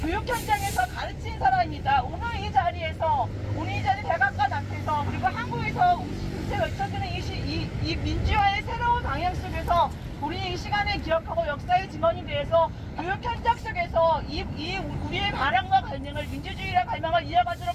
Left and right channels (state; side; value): identical; both; correlation 1.00